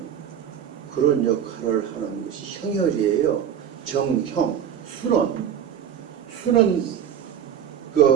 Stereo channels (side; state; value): left; quieter; 9.0 dB